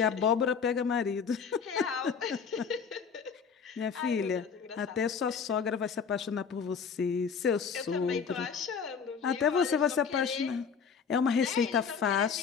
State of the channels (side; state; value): right; quieter; 6.3 dB